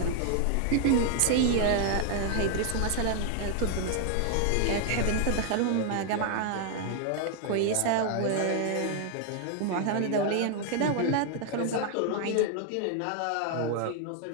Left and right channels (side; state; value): both; different; correlation 0.00